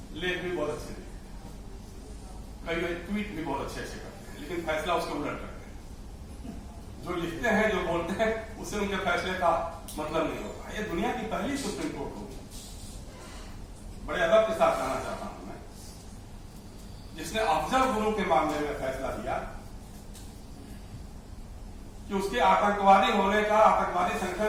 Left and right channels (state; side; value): identical; both; correlation 1.00